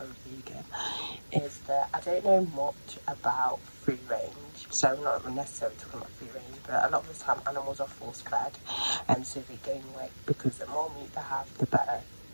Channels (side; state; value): both; inverted; correlation -1.00